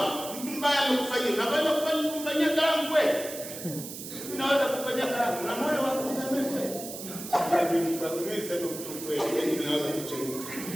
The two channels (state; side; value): noise; right; hiss, 10 dB below the sound